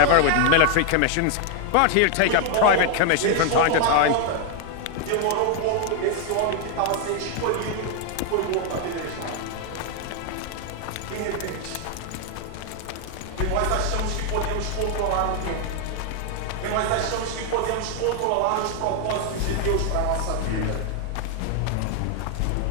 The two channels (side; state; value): both; different; correlation 0.00